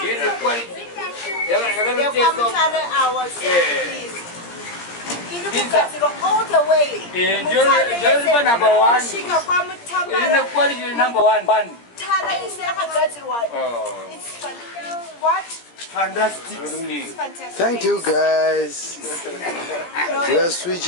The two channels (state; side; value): late; right; 17 ms